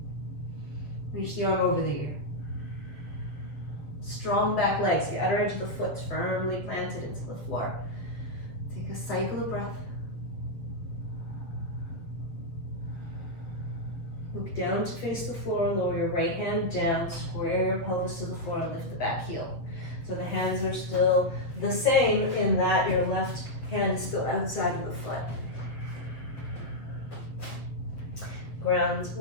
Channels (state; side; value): late; right; 7.7 ms